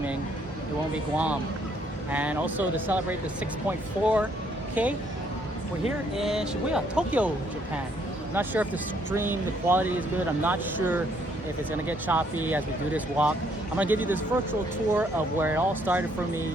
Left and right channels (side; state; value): both; normal; correlation 0.68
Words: it won't be Guam. And also to celebrate the 6.4K, we're here in Shibuya, Tokyo, Japan. I'm not sure if the stream, the quality is good. I'm not sure if it's gonna get choppy as we do this walk. I'm gonna give you this virtual tour of where it all started for